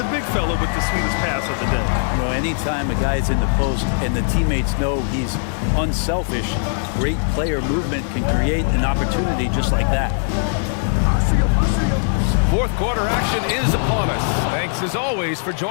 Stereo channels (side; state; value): right; silent; digital silence